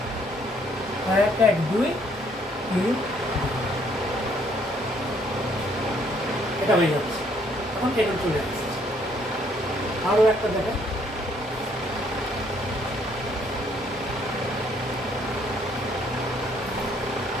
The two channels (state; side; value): normal; both; correlation 0.66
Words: 1 1 2 3, এটা হয়ে যাচ্ছে। এখন এটা চলে আসছে। আরো একটা দেখেন,